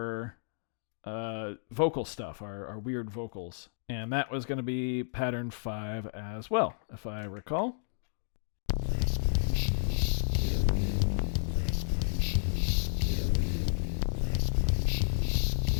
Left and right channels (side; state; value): right; silent; digital silence